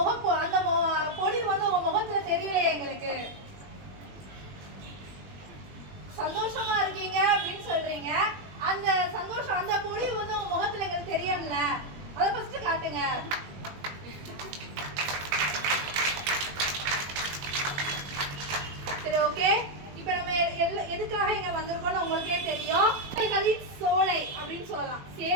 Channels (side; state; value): left; late; 21 ms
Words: அந்த பொலிவு வந்து உங்க முகத்துல தெரியலையே எங்களுக்கு. சந்தோஷமா இருக்கீங்க அப்படின்னு சொல்றீங்க. அந்த சந்தோஷம், அந்த பொலிவு வந்து உங்க முகத்துல எங்களுக்கு தெரியல. அதை ஃபர்ஸ்ட் காட்டுங்க. சரி, ஓகே. இப்ப நம்ம எதுக்காக இங்க வந்திருக்கோம்னு உங்களுக்கே தெரியும். சேவைகளின் சோலை அப்படின்னு சொல்லலாம்.